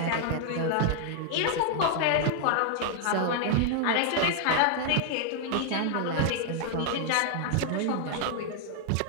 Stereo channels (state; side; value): different; both; correlation 0.00